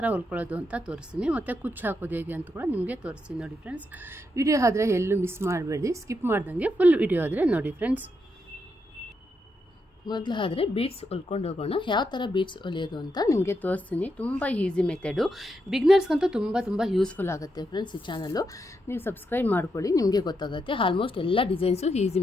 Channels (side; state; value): both; normal; correlation 0.82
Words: ಹೊಲ್ಕೊಳ್ಳೋದು ಅಂತ ತೋರಿಸ್ತೀನಿ. ಮತ್ತು ಕುಚ್ಚು ಹಾಕೋದು ಹೇಗೆ ಅಂತ ಕೂಡ ನಿಮಗೆ ತೋರಿಸ್ತೀನಿ. ನೋಡಿ ಫ್ರೆಂಡ್ಸ್, ವಿಡಿಯೋ ಆದರೆ ಎಲ್ಲೂ ಮಿಸ್ ಮಾಡಬೇಡಿ, ಸ್ಕಿಪ್ ಮಾಡ್ದಂಗೆ ಫುಲ್ ವಿಡಿಯೋ ಆದರೆ ನೋಡಿ ಫ್ರೆಂಡ್ಸ್. ಮೊದಲಾದರೆ ಬೀಡ್ಸ್ ಹೊಲ್ಕೊಂಡು ಹೋಗೋಣ. ಯಾವ ಥರ ಬೀಡ್ಸ್ ಹೊಲಿಯೋದು ಅಂತ ನಿಮಗೆ ತೋರಿಸ್ತೀನಿ. ತುಂಬ ಈಸಿ ಮೆಥಡು, ಬಿಗ್ನರ್ಸ್ಗಂತೂ ತುಂಬ ಯೂಸ್ಫುಲ್ ಆಗುತ್ತೆ ಫ್ರೆಂಡ್ಸ್. ಈ ಚಾನಲ್ಲು ನೀವು ಸಬ್ಸ್ಕ್ರೈಬ್ ಮಾಡ್ಕೊಳ್ಳಿ, ನಿಮಗೆ ಗೊತ್ತಾಗುತ್ತೆ. ಆಲ್ಮೋಸ್ಟ್ ಎಲ್ಲ ಡಿಸೈನ್ಸು ಈಸಿ